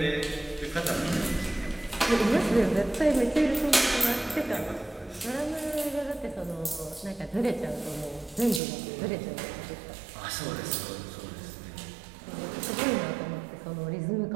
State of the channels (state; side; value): drops out; left; at 8.6 s